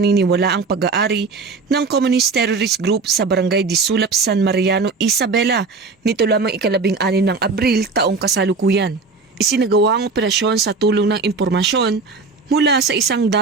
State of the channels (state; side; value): quieter; left; 4.3 dB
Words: ang pag-aari ng Communist Terrorist Group sa Barangay Disulap, San Mariano, Isabela nito lamang ika-16 ng Abril taong kasalukuyan. Isinagawa ang operasyon sa tulong ng impormasyon mula sa isang